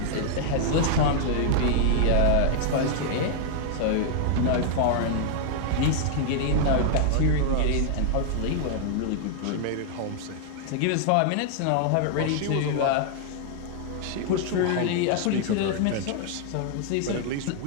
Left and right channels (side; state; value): both; different; correlation 0.00